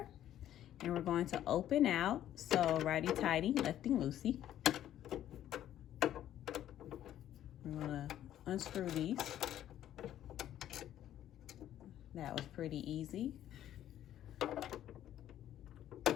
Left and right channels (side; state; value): right; quieter; 11.8 dB